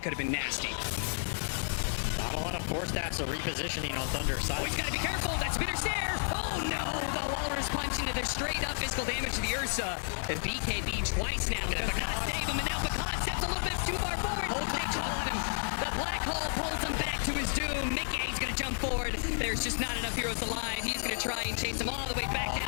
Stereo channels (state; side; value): silent; right; 56 dB below the other